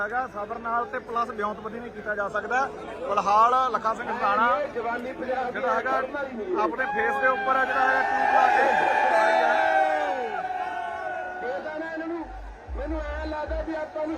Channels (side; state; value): both; identical; correlation 1.00